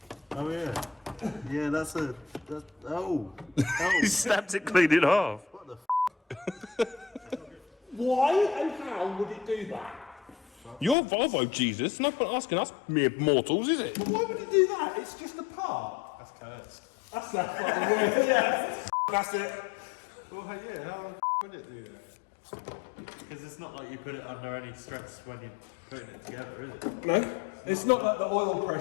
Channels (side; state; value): right; drops out; at 11.0 s